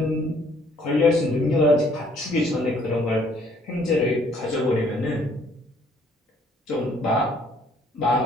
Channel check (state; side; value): normal; both; correlation 0.62